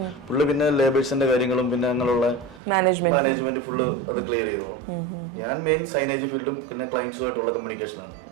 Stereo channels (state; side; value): drops out; left; at 2.6 s